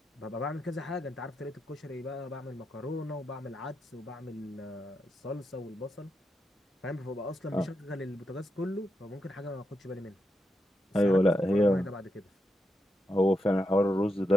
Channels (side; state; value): both; normal; correlation 0.84